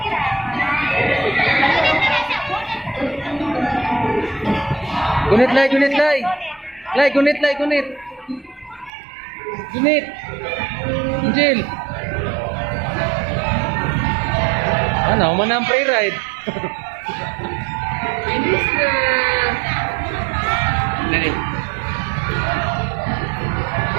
Gunit lay, gunit lay. Lay, gunit lay, gunit. Gunit. Angel. Ano, mana ang free ride. Bilis na. Dali.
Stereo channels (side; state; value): left; drops out; at 8.9 s